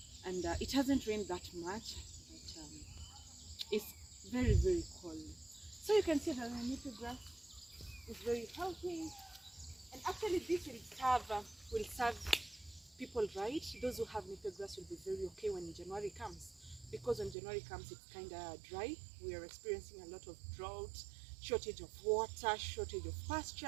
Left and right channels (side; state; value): left; drops out; at 17.4 s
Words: And it hasn't rained that much, but it's very cold. So you can see that the napier grass is very healthy, and actually this will serve people right. Those who have napier grass will be very okay when January comes, because when January comes it's kind of dry. We are experiencing a lot of drought, shortage of water, shortage of